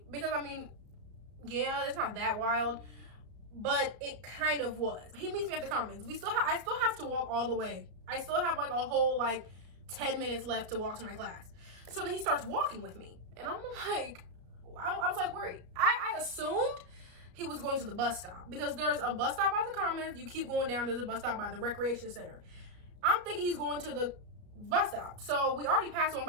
because I mean, yeah, it's not that wild. but it kind of was. He meets me at the Commons. I still have to walk all the way. I still have like a whole like 10 minutes left to walk to my class. So then he starts walking with me, and I'm like, I was like, where are you? I assumed he was going to the bus stop, because there's a bus stop by the Commons. You keep going down, there's a bus stop by the recreation center. I'm thinking he's going to the bus stop. So we already passed one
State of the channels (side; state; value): left; late; 34 ms